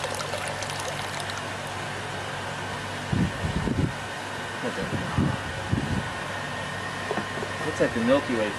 Looks like the Milky Way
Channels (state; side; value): identical; both; correlation 1.00